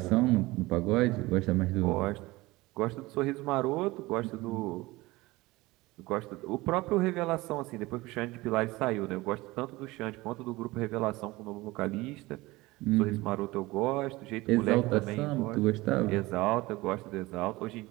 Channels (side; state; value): left; quieter; 20.5 dB